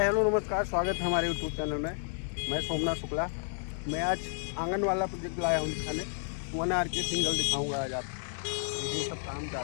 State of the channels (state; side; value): silent; right; digital silence